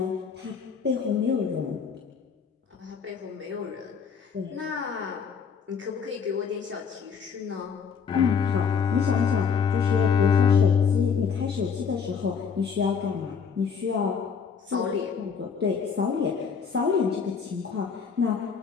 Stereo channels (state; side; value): quieter; right; 6.2 dB